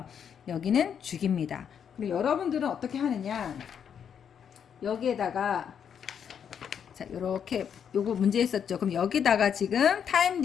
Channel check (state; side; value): quieter; right; 7.9 dB